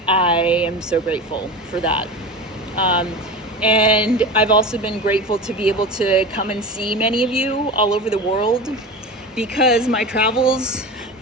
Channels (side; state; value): both; normal; correlation 0.28